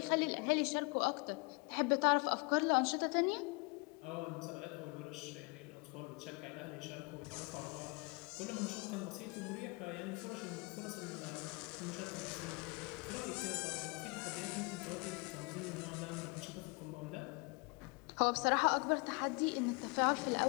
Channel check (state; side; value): quieter; right; 30.0 dB